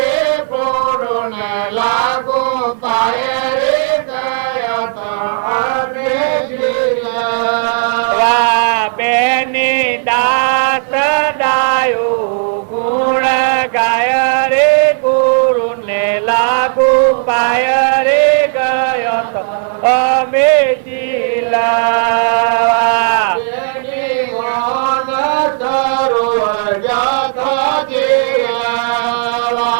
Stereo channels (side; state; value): left; silent; 66 dB below the other